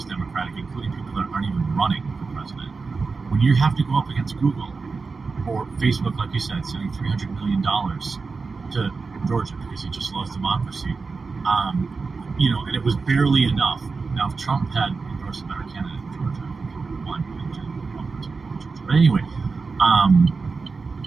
Democratic, including people that aren't even running for president. When you have to go up against Google or Facebook, like you said, sending $300 million to Georgia because he just loves democracy, and it was barely enough. Now, if Trump had endorsed a better candidate in Georgia, one, but anyway,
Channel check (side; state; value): left; quieter; 4.4 dB